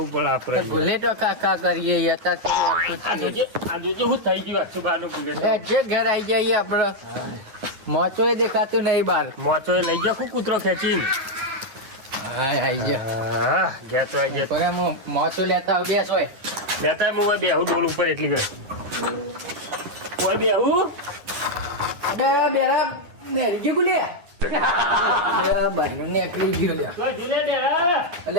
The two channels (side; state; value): left; late; 10 ms